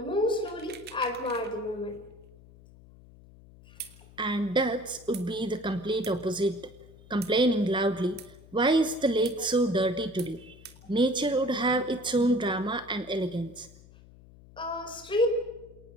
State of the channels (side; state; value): left; noise; hum, 22 dB below the sound